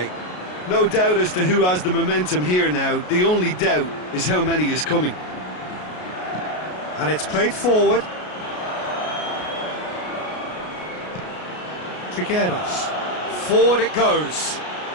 No doubt as to who has the momentum here now. The only doubt is how many is coming. And it's played forward. Trigueros. Forward it goes.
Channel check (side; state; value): right; late; 33 ms